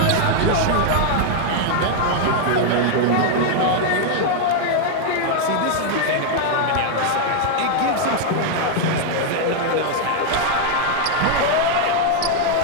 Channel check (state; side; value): different; both; correlation 0.00